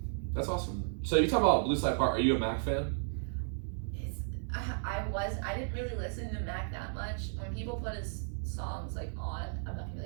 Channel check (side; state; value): left; silent; digital silence